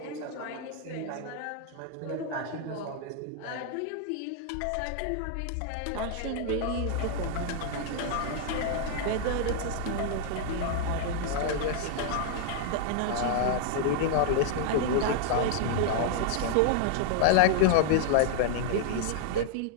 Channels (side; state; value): both; different; correlation 0.00